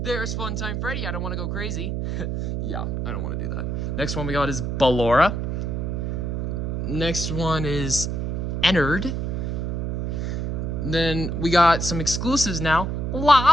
There's Funtime Freddy. I don't want to go crazy. Yeah, I don't want to do that. Next one we got is Ballora. Next one is Ennard. Then we got some exclusives now.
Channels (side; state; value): right; noise; hum, 2 dB below the sound